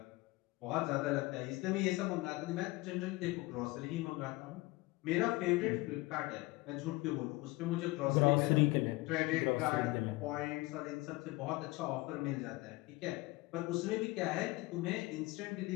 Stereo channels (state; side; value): quieter; right; 21.8 dB